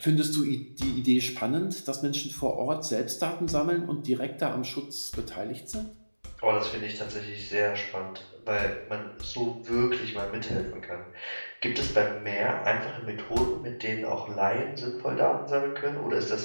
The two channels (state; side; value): inverted; both; correlation -1.00